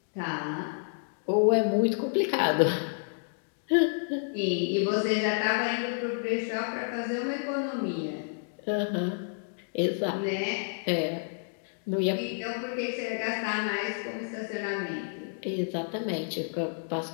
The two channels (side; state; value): right; silent; digital silence